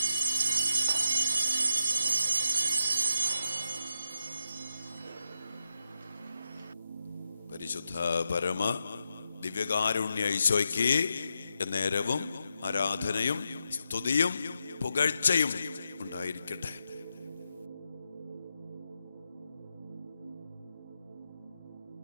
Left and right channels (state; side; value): inverted; both; correlation -0.86